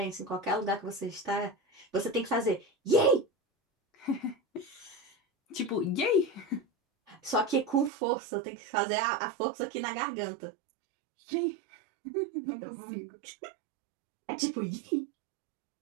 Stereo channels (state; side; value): drops out; left; at 7.9 s